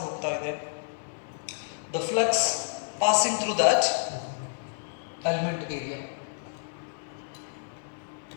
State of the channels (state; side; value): silent; right; 57 dB below the other